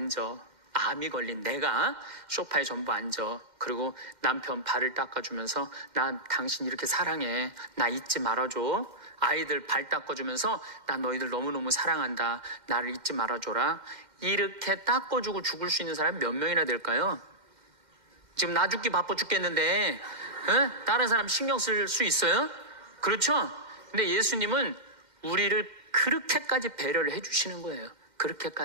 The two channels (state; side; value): late; left; 2.1 ms